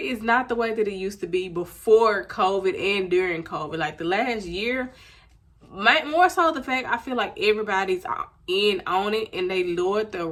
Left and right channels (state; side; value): identical; both; correlation 1.00